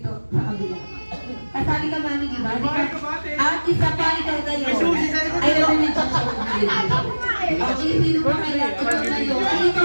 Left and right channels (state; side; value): inverted; both; correlation -1.00